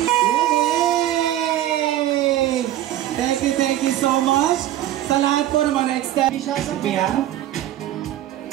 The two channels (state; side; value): quieter; left; 13.2 dB